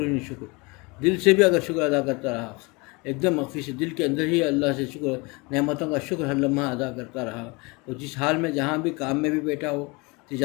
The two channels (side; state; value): right; quieter; 27.1 dB